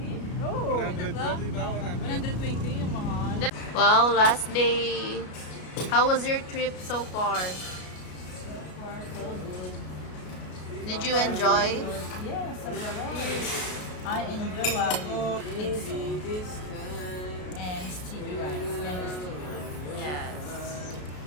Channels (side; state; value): right; late; 33 ms